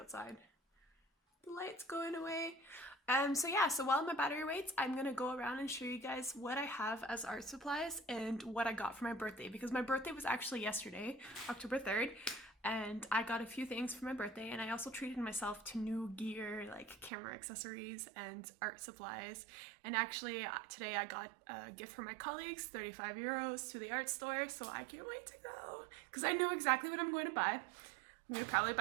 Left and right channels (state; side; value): drops out; left; at 17.1 s